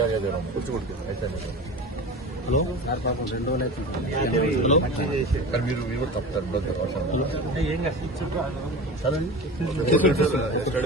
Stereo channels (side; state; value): both; normal; correlation 0.32